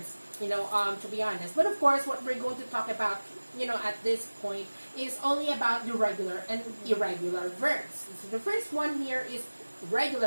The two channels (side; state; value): both; inverted; correlation -1.00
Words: to be honest. But of course, what we're going to talk about, at this point is only about the regular and irregular verbs. So the first one here is